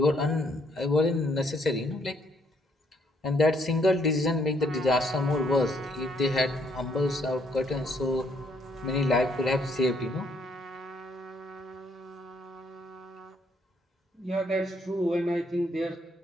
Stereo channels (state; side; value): normal; both; correlation 0.69